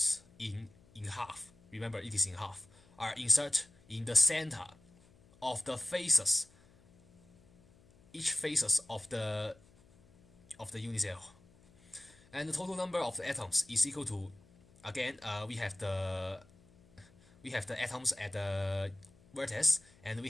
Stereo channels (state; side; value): noise; left; hum, 28 dB below the sound